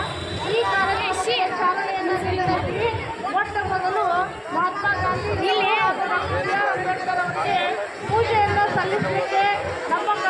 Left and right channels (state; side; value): identical; both; correlation 1.00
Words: ಈ ಕಾರ್ಯಕ್ರಮಕ್ಕೆ ಚಾಲನೆಯನ್ನು ನೀಡಿದ್ದೀವಿ. ಮೊಟ್ಟ ಮೊದಲು ಮಹಾತ್ಮ ಗಾಂಧಿ ಅಂಬೇಡ್ಕರ್ ಅವರಿಗೆ ಪೂಜೆಯನ್ನು ಸಲ್ಲಿಸಲಿಕ್ಕೆ ನಮ್ಮ